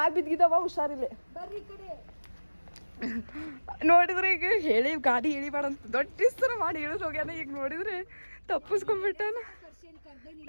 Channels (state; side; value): inverted; both; correlation -1.00